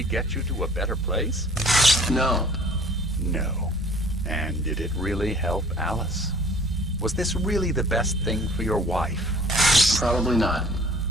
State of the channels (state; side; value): normal; both; correlation 0.51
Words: get you to a better place? No. No. And did it really help Alice? Was this really the best thing for your wife? Probably not.